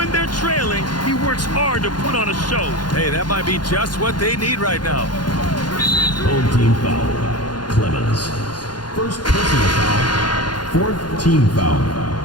they're trailing, he works hard to put on a show. Hey, that might be just what they need right now. Home team foul. Clemens. First personal foul. 4th team foul.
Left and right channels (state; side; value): late; right; 0.71 ms